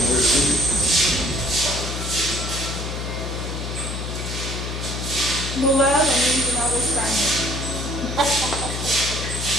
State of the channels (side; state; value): left; noise; hum, 5 dB below the sound